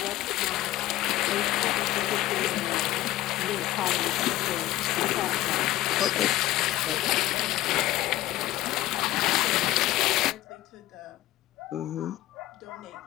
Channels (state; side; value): quieter; right; 15.5 dB